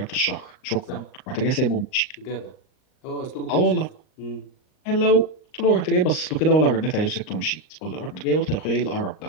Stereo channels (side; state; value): right; late; 38 ms